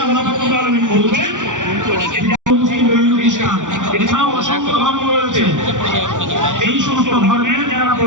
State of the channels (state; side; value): late; left; 0.87 ms